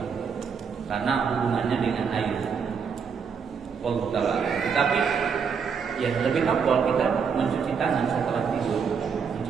karena hubungannya dengan air. Wallahu ta'ala. Tetapi ya lebih afdal kita mencuci tangan setelah tidur.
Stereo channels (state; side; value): quieter; left; 6.3 dB